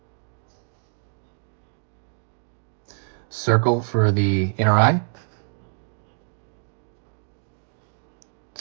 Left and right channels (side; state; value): left; silent; digital silence